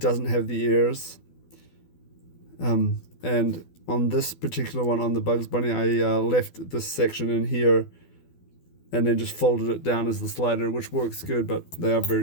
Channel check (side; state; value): right; late; 12 ms